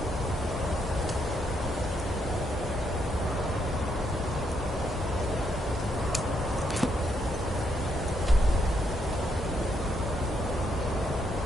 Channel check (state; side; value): normal; both; correlation 0.76